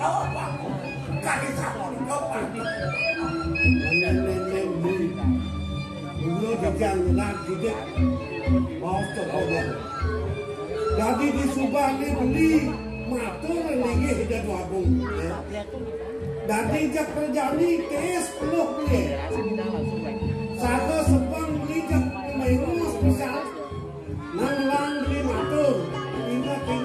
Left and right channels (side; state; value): both; identical; correlation 1.00